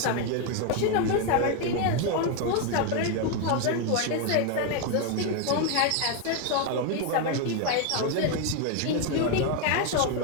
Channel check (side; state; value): both; different; correlation 0.01